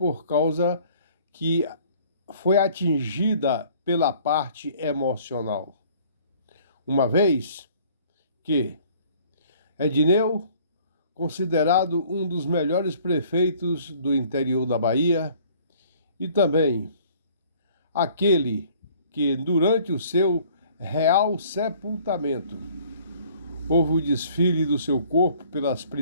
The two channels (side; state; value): both; inverted; correlation -0.56